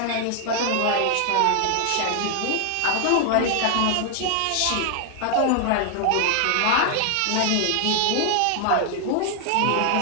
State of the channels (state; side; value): different; both; correlation 0.00